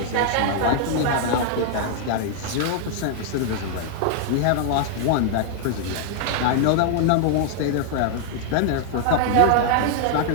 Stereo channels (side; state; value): both; different; correlation -0.01